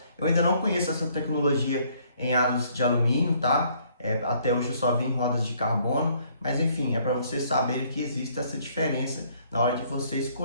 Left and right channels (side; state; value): both; inverted; correlation -0.64